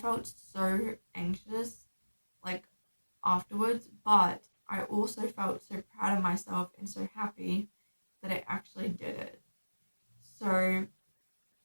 so anxious, like afterwards, but I also felt so proud of myself and so happy that I actually did it. So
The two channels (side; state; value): both; inverted; correlation -1.00